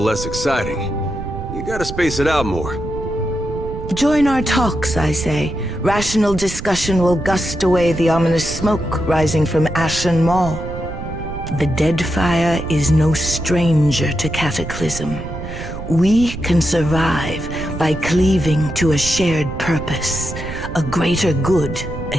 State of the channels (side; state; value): right; noise; rumble, 8 dB below the sound